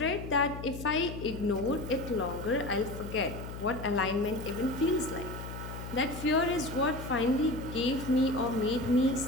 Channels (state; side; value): noise; left; hum, 9 dB below the sound